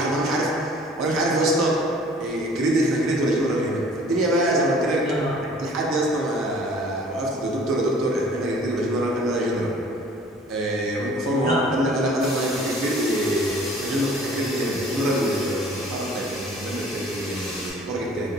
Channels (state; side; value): normal; both; correlation 0.51